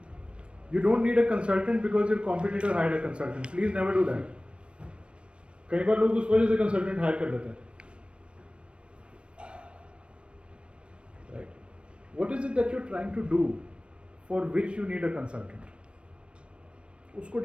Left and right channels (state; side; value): late; left; 0.059 ms